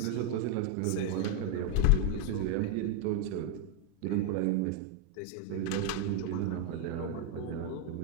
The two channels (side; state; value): both; different; correlation 0.00